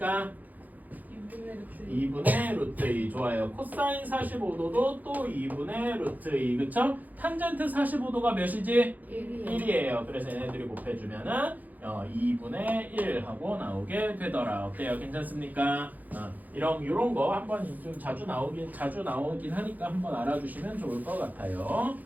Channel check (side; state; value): left; late; 0.082 ms